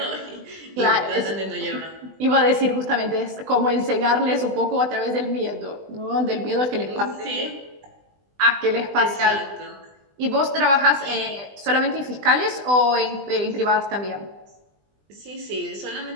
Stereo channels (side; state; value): left; late; 20 ms